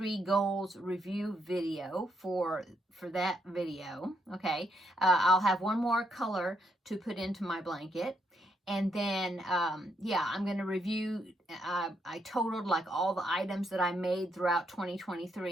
goals review video for that video. Okay, I'll have one more color to put into my blanket. And then, yeah, I'm going to review, I totaled like all the items that I made throughout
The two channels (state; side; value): normal; both; correlation 0.76